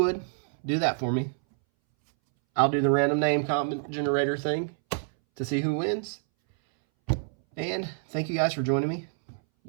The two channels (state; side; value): silent; left; 60 dB below the other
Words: do that for me. I'll do the random name comment generator thing to see who wins. And thank you guys for joining me.